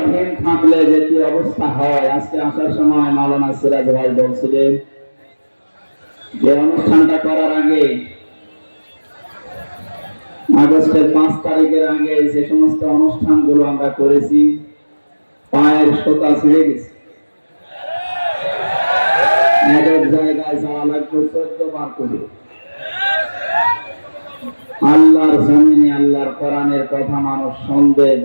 থাকলে যে কি অবস্থা হয়, আজকে আসার সময় মাওলানা সিরাজ ভাই বলছিলেন যে অনুষ্ঠানটা করার আগে আগস্টের 5 তারিখের আগে যে সমস্ত অনুষ্ঠানগুলো আমরা করেছি পায়ের সোতা ছিঁড়ে গেছে। এক এক জায়গায় যাওয়া লাগবে 14 বার করে। আল্লাহর জমিনে আল্লাহর কোরআনের কথা মানুষ শুনবে,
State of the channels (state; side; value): inverted; both; correlation -1.00